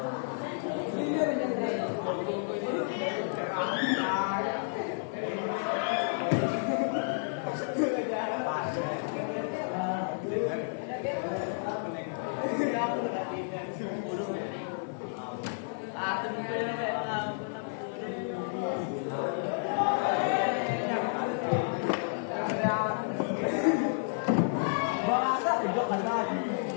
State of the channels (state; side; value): silent; right; 57 dB below the other